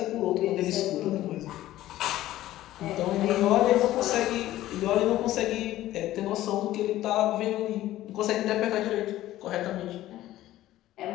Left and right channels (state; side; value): quieter; right; 14.7 dB